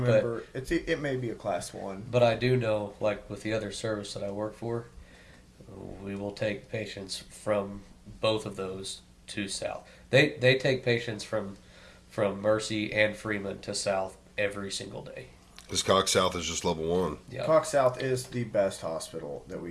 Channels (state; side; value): identical; both; correlation 1.00